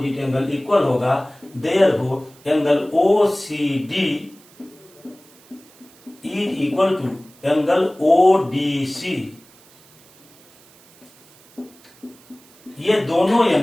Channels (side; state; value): right; noise; hiss, 27 dB below the sound